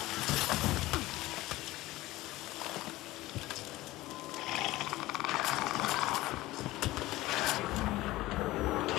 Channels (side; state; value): right; quieter; 17.9 dB